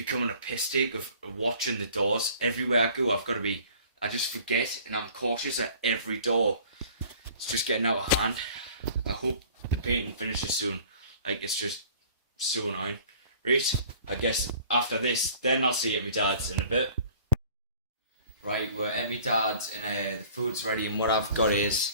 a piss take of watching the doors. Everywhere I go, I just forget and I'm cautious at every door. It's just getting out of hand. I hope the painting finishes soon. Like, it's just so annoying. Right, I guess after this, then I'll see you at my dad's in a bit. Right, we're at my dad's and the food's ready and what I've got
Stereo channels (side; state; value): both; inverted; correlation -0.49